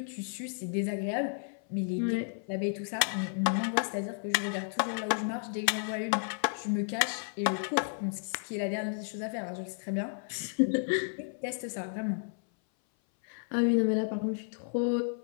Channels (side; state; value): right; silent; 56 dB below the other